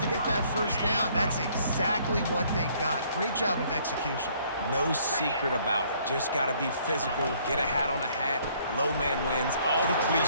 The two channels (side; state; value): both; inverted; correlation -0.62